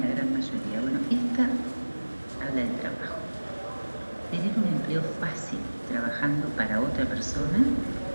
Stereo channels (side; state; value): both; inverted; correlation -1.00